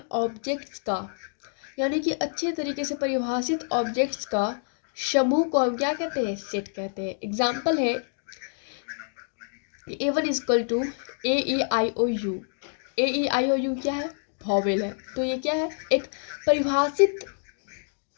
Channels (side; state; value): right; silent; 60 dB below the other